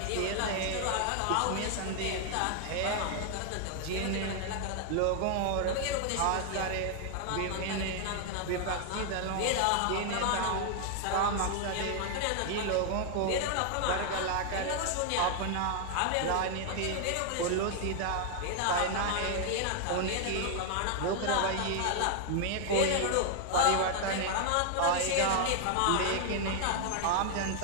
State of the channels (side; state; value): both; different; correlation 0.00